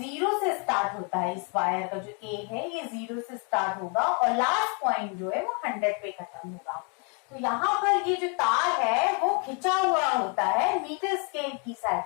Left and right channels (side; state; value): right; quieter; 37.2 dB